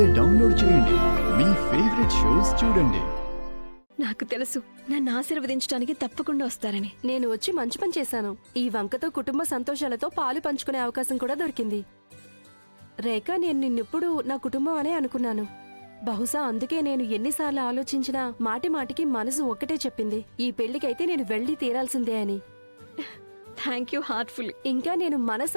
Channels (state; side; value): inverted; both; correlation -1.00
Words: డౌన్లోడ్ చేయండి. మీ ఫేవరెట్ షోస్ చూడండి. నాకు తెలుసు నన్ను ఆశీర్వదించడానికి తప్పకుండా వస్తారని. నేను వచ్చి మంచి పని చేశాను. ఈ వంకతో కుటుంబ సంతోషాలతో పాలు పంచుకునే అవకాశం కూడా దొరికింది. రేఖ, నేను నిన్నెప్పుడు నా కుటుంబం అనే అనుకున్నాను. బహుశా అందుకే నేను ఎన్నిసార్లు ఆలోచించినా మాటి మాటికి మనసు ఒక్కటే చెప్పింది, ఈ పెళ్లికైతే నేను వెళ్ళి తీరాల్సిందే అని. Thank you heartful. ఇంకా నేను